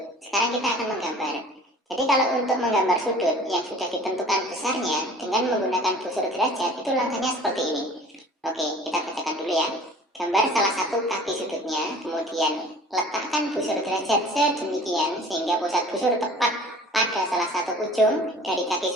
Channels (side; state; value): both; normal; correlation 0.47